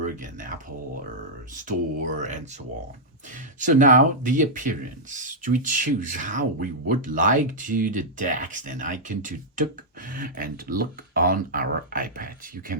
and Apple Store and so on. So now the appearance. We choose how we would like to the text and icon to look on our iPad. You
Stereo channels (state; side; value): normal; both; correlation -0.08